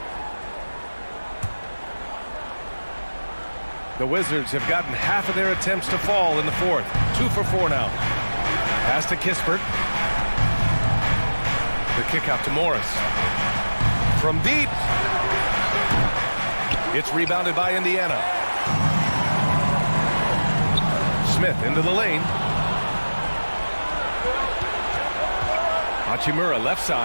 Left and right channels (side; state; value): both; inverted; correlation -1.00